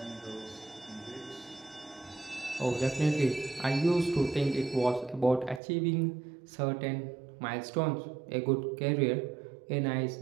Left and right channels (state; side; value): drops out; left; at 5.6 s